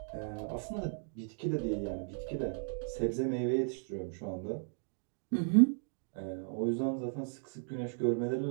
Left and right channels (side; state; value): left; silent; 54 dB below the other